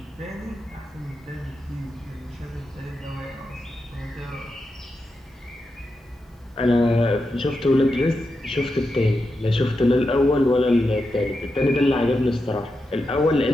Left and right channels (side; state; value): both; normal; correlation 0.88